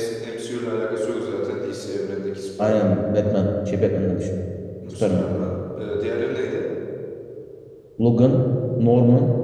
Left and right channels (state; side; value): identical; both; correlation 1.00